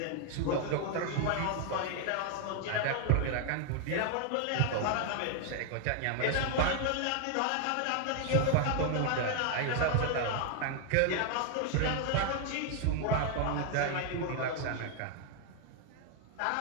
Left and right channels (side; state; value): both; different; correlation 0.00